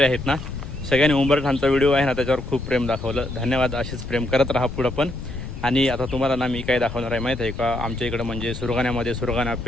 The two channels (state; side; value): noise; left; rumble, 9 dB below the sound